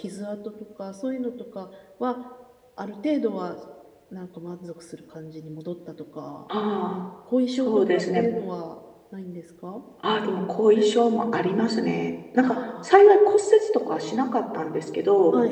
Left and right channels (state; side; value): identical; both; correlation 1.00